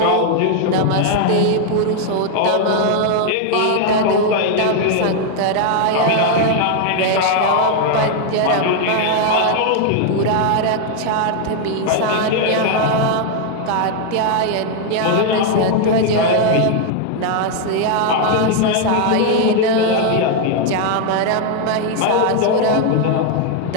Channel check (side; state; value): both; different; correlation 0.00